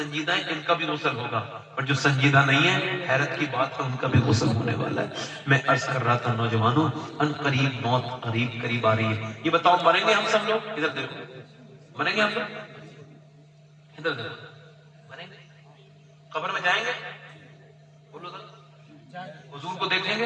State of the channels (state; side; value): identical; both; correlation 1.00